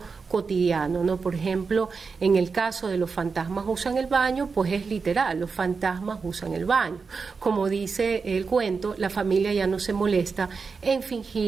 cotidiano, ¿no? Por ejemplo, en el caso de los fantasmas usan el baño, pues es literal, los fantasmas usan el baño. Como dice el cuento, la familia ya no se molesta en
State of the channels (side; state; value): left; quieter; 4.9 dB